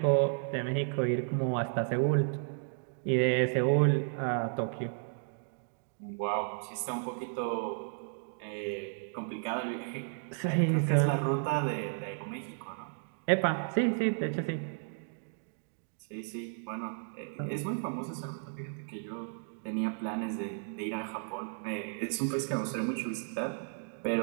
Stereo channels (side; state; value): left; silent; digital silence